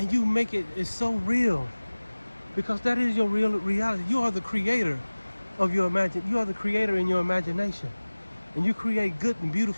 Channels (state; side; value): inverted; both; correlation -1.00